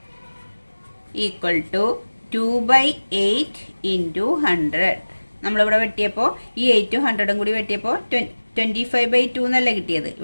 Equal to 2/8 into 100. നമ്മളിവിടെ വെട്ടിയപ്പോൾ ഈ 8ഉം 100ഉം കൂടി വെട്ടിയപ്പോൾ 25/2 എന്നല്ല കിട്ടിയത്.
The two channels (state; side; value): inverted; both; correlation -1.00